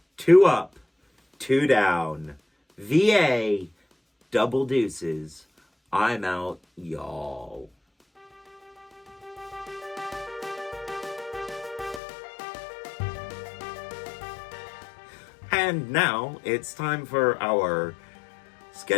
2 up, 2 down. VA, double deuces. I'm out, y'all. And now it's time for our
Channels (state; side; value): drops out; right; at 12.0 s